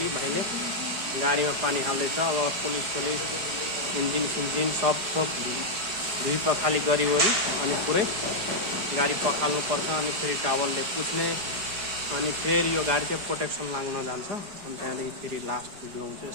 भाइले गाडीमा पानी हाल्दैछ। अब पुलिस इन्जिन सब धुई पखाली गरिवरी अनि पुरै गाडी पखाल्नुपर्छ। अनि फेरि टावलले पुछ्ने अनि फेरि यो गाडी चाहिँ प्रोटेक्सन लाग्न जान्छ। अनि त्यहाँदेखि फेरि लास्ट भिडियो हुन्छ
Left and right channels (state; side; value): late; left; 4.9 ms